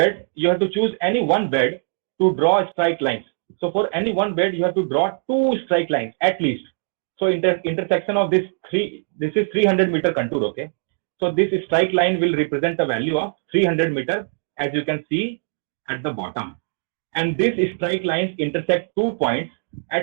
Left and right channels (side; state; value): left; silent; digital silence